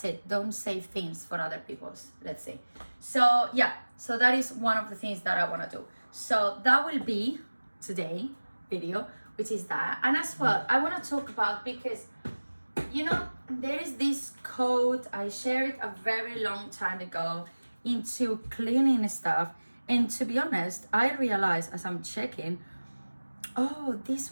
it. Don't say things for other people's, let's say. So yeah, so that is one of the things that I want to do. So that will be today video, which is that. And as well, I want to talk about, because you know, there is this code I shared a very long time ago into cleaning stuff, and to be honest, I realized as I'm checking, oh,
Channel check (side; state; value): both; inverted; correlation -1.00